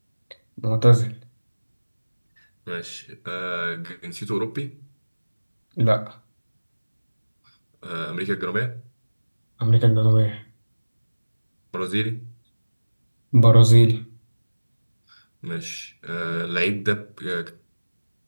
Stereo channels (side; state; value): both; inverted; correlation -1.00